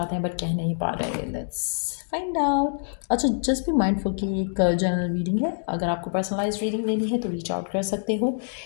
हैं बट कह नहीं पा रहे। Let's find out. अच्छा, जस्ट बी माइंडफुल कि एक जनरल रीडिंग है। अगर आपको पर्सनलाइज रीडिंग लेनी है तो रीच आउट कर सकते हो।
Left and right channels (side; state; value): right; silent; digital silence